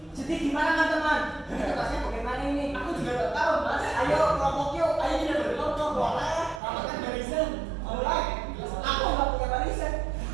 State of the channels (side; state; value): left; drops out; at 6.6 s